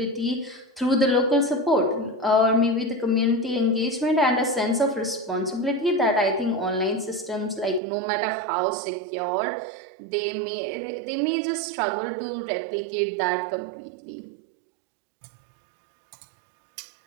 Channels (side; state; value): left; drops out; at 7.8 s